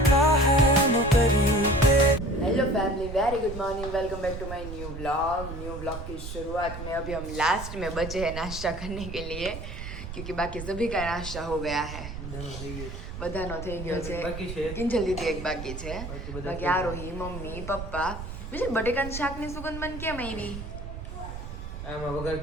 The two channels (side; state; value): right; noise; rumble, 9 dB below the sound